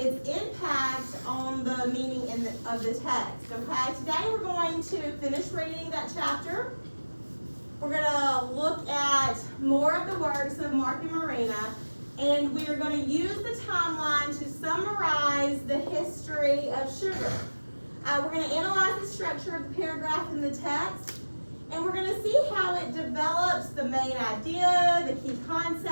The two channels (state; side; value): inverted; both; correlation -1.00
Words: impact on the meaning of the text. Okay, today we're going to finish reading that chapter. We're going to look at more of the works of Mark and Marina, and we are going to use the timeline to summarize the history of sugar. We're going to analyze the structure of the paragraph in the text, and we're going to see how it develops the main idea, the key